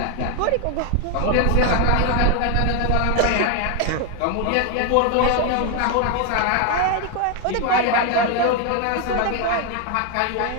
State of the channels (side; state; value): both; different; correlation 0.01